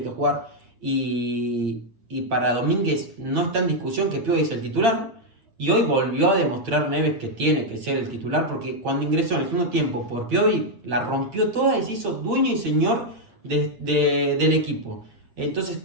que jugar. Y para Domínguez no está en discusión que Piovi es el titular. Y hoy volvió a demostrar Neves que tiene que ser el titular, porque cuando ingresó en el segundo tiempo por Piovi, la rompió toda y se hizo dueño y señor del equipo. Entonces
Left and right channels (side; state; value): left; late; 8.7 ms